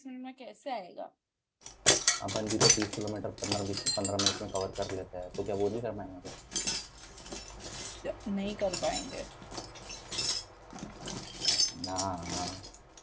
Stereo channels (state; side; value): identical; both; correlation 1.00